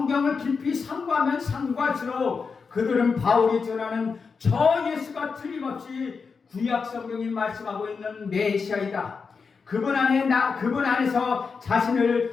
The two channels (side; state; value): right; quieter; 5.2 dB